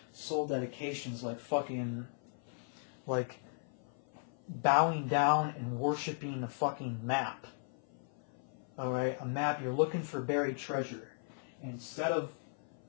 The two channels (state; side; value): silent; right; 53 dB below the other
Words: soul dedication is like fucking, like, bowing down and worshiping a fucking map. Alright? A map, you're looking for buried treasure. And instead of